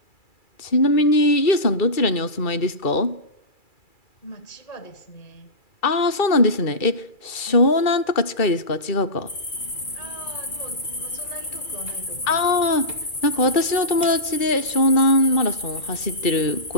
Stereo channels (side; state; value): right; late; 2.3 ms